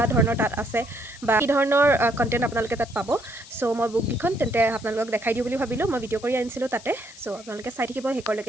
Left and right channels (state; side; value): noise; left; hiss, 19 dB below the sound